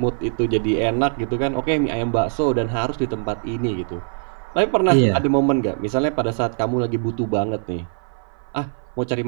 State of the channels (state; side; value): silent; left; 58 dB below the other